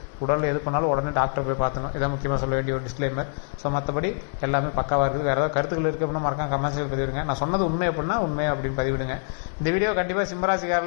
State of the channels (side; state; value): right; silent; 62 dB below the other